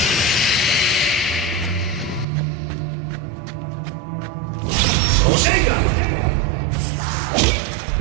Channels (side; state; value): left; drops out; at 2.2 s